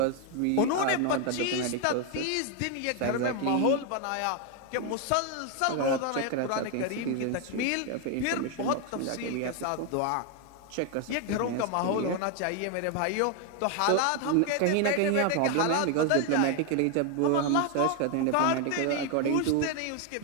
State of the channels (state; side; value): different; both; correlation 0.01